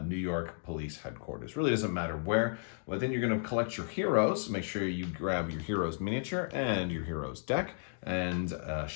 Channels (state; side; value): silent; right; digital silence